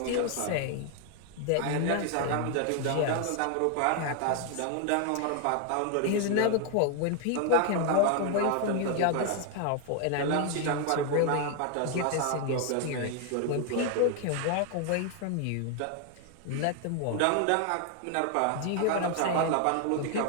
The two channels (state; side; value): different; both; correlation 0.00